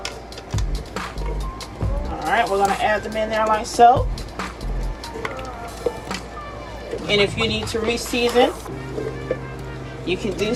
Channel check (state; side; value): identical; both; correlation 1.00